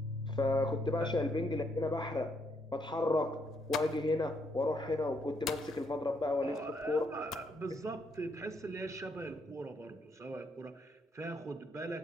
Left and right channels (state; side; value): normal; both; correlation 0.74